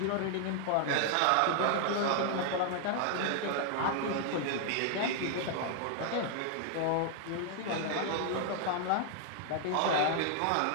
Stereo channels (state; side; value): different; both; correlation 0.00